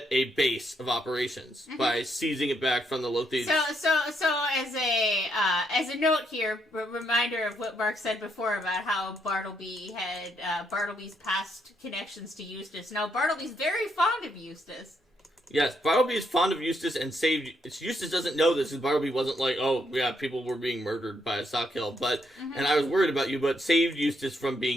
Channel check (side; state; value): both; normal; correlation 0.76